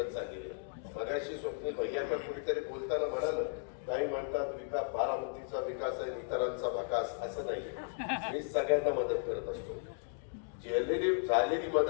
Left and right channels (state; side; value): silent; right; digital silence